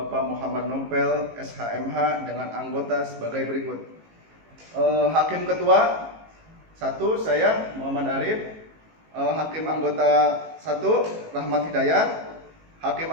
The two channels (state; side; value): late; left; 18 ms